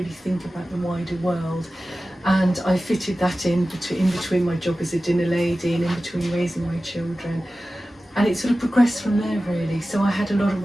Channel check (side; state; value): both; normal; correlation 0.95